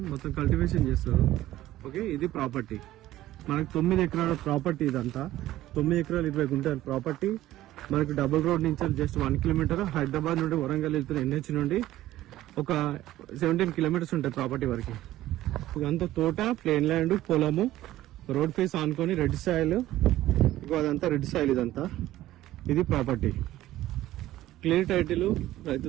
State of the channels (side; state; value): left; quieter; 14.8 dB